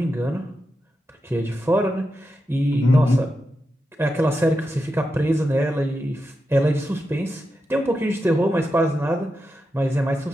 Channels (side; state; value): both; normal; correlation 0.88